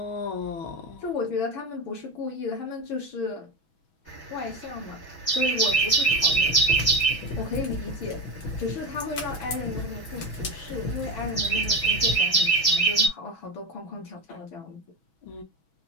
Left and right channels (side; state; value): right; late; 6.2 ms